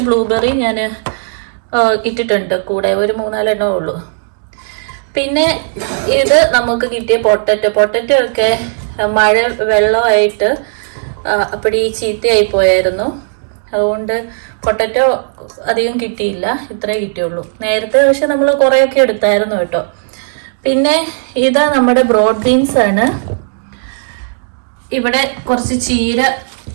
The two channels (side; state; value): left; silent; digital silence